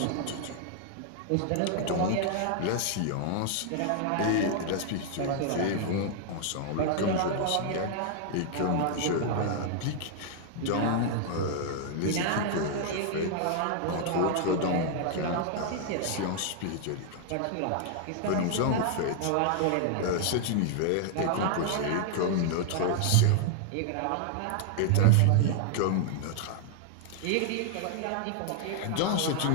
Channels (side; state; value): both; different; correlation 0.00